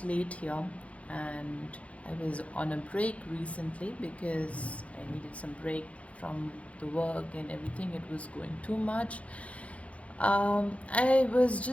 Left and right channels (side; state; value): right; late; 0.064 ms